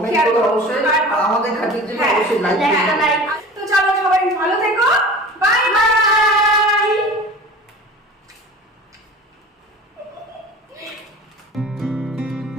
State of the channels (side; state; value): both; normal; correlation 0.39